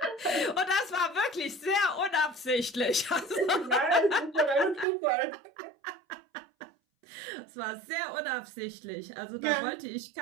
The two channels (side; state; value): left; drops out; at 4.9 s